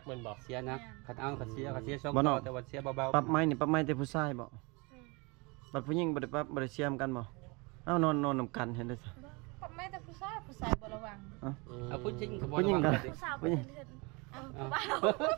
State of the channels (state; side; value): quieter; left; 28.1 dB